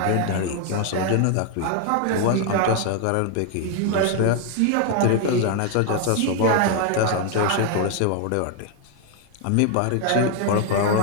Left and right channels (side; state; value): both; different; correlation 0.01